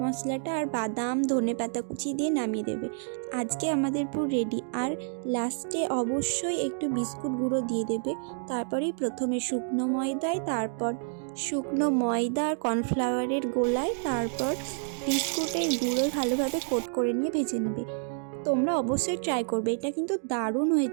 মশলাটা, আর বাদাম, ধনেপাতা কুচি দিয়ে নামিয়ে দেবে। আজকে আমাদের পুরো রেডি। আর লাস্টে অবশ্যই একটু বিস্কুট গুঁড়ো দিয়ে দেবে। তারপরেই প্রথমে শুকনো ময়দায়, তারপর শুকনো ময়দা আর কর্নফ্লাওয়ারের গোলায়, তারপর বিস্কুটের গুঁড়ো ভালোভাবে কোট করে নিয়ে ভেজে নেবে। তোমরা অবশ্যই ট্রাই করবে, এটা কিন্তু দারুণ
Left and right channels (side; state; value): left; silent; digital silence